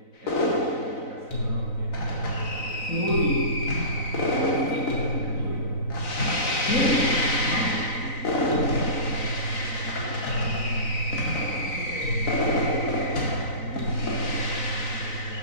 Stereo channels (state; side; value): late; right; 4.0 ms